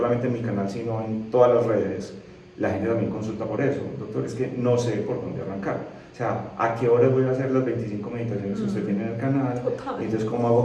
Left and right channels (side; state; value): both; identical; correlation 1.00